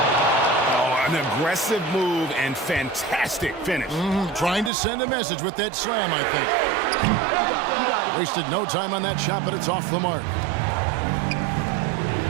Oh, an aggressive move and fantastic finish. Trying to send a message with that slam, I think. Wasted no time on that shot, but it's off the mark.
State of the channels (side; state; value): left; drops out; at 4.7 s